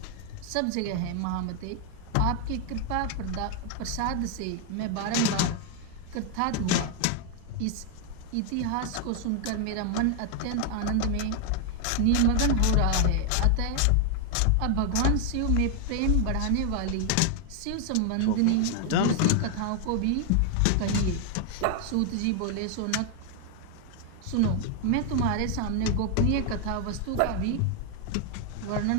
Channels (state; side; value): different; both; correlation 0.00